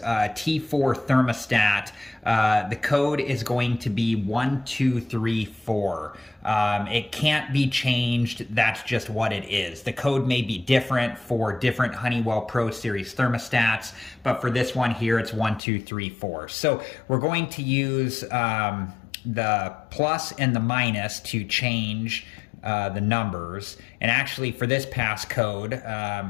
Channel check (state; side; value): drops out; right; at 15.6 s